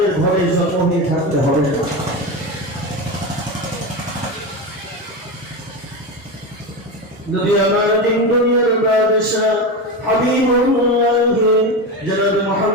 ঘরে জন্ম হয়ে থাকতে হবে না। নবী আমার দিন দুনিয়ার বাদশাহ হাবিবুল্লাহ জনাব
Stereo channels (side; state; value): both; normal; correlation 0.19